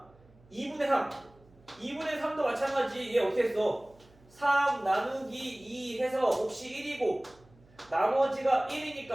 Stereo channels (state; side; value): noise; right; hum, 28 dB below the sound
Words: 2분의 3. 2분의 3도 마찬가지. 얘 어떻게 했어? 3 나누기 2 해서 몫이 1이고 나머지가